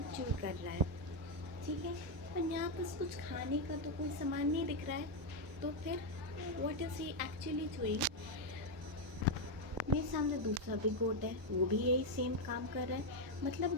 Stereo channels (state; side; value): normal; both; correlation 0.02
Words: च्यू कर रहा है। ठीक है, पर यहाँ पर कुछ खाने का तो कोई सामान नहीं दिख रहा है। तो फिर what is he actually doing? मेरे सामने दूसरा भी गोट है, वो भी यही सेम काम कर रहा है। मतलब